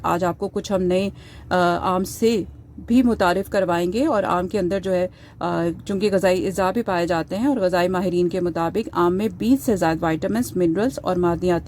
آج آپ کو کچھ ہم نئے آم سے بھی متعارف کروائیں گے، اور آم کے اندر جو ہے چونکہ غذائی اجزاء بھی پائے جاتے ہیں، اور غذائی ماہرین کے مطابق آم میں 20 سے زائد وائٹامنس، منرلز اور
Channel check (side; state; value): both; identical; correlation 1.00